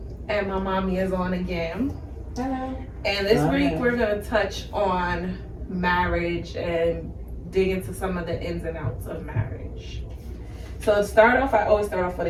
and my mommy is on again. Hello. And this week we're gonna touch on marriage and dig into some of the ins and outs of marriage. So to start off, I always start off with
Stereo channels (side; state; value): both; identical; correlation 1.00